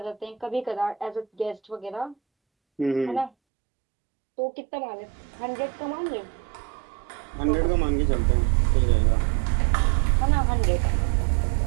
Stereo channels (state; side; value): drops out; left; at 3.3 s